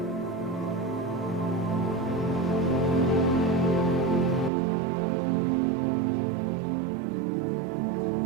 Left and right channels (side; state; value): left; drops out; at 4.5 s